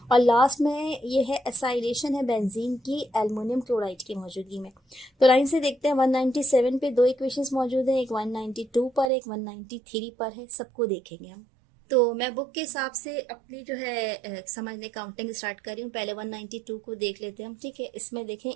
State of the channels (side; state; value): left; drops out; at 9.1 s